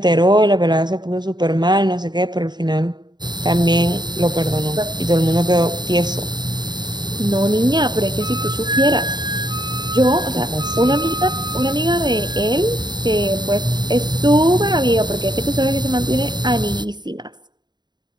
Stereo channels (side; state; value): left; late; 0.21 ms